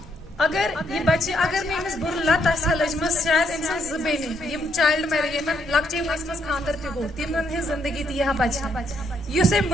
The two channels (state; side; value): normal; both; correlation 0.74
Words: اگر یہِ بچہِ اگر نہٕ أمِس بُرٕ لت آسہِ ہا لٔجمٕژ شاید أمۍ سٕنٛز 2 بیٚنہِ یِم چایلڈ میریج یِمن لۄکچے وٲنٛسہِ منٛز خانٛدر تہِ گوٚو تِمن ہٕنٛز زندگی تہِ یی ہا بچہِ یُس أمۍ